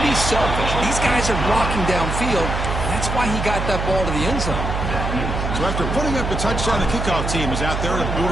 be selfish. These guys are blocking downfield. That's why he got that ball to the end zone. So after putting up the touchdown, the kickoff team is out there to boot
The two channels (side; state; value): right; noise; hum, 2 dB below the sound